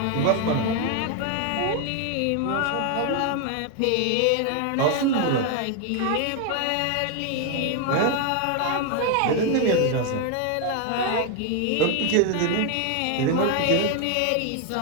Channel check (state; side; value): different; both; correlation 0.01